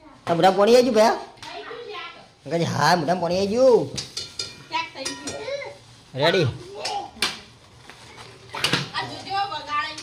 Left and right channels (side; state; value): both; identical; correlation 1.00